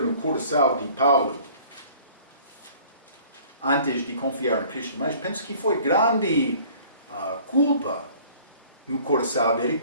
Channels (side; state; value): both; inverted; correlation -0.51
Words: coração de Paulo antes de confiar em Cristo, mas penso que foi grande culpa no coração dele.